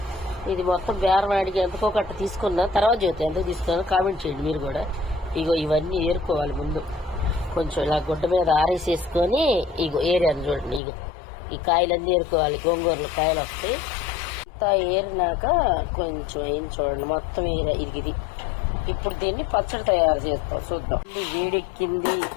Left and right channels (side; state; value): right; drops out; at 10.8 s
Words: ఇది మొత్తం బేరవాడికి ఎంతకో కట్ట తీసుకున్నా, తర్వాత చూస్తే ఎంతకు తీసుకున్నా కామెంట్ చేయండి మీరు కూడా. ఇగో ఇవన్నీ ఏరుకోవాలి ముందు. కొంచెం ఇలా గుడ్డ మీద ఆరేసేసుకొని ఇగో ఏరాను చూడండి. ఇగో ఈ కాయలన్నీ ఏరుకోవాలి. గోంగూరలో కాయలు వస్తాయి. అంతా ఏరినాక కొంచెం అయింది చూడండి, మొత్తం ఏరా. ఇది ఇప్పుడు దీన్ని పచ్చడి తయారు చేస్తాం, చూద్దాం. వేడెక్కింది.